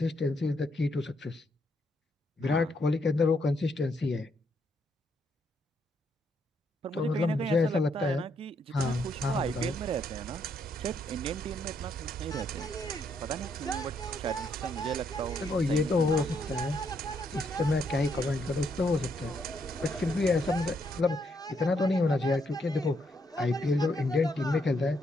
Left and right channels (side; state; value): both; normal; correlation 0.75